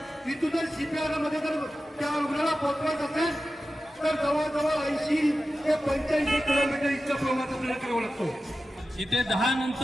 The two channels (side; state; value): both; normal; correlation 0.94